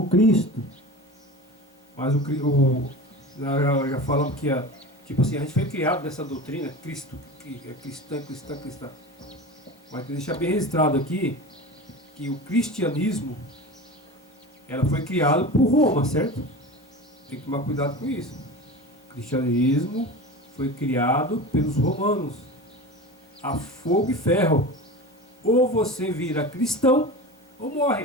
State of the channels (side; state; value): both; normal; correlation 0.31